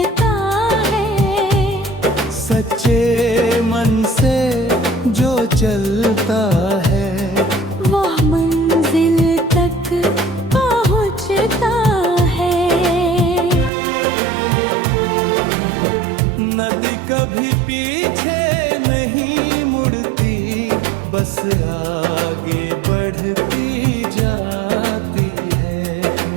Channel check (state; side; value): drops out; left; at 13.7 s